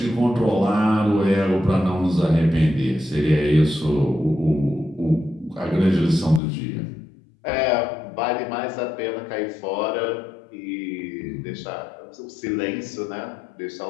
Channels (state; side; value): drops out; right; at 6.4 s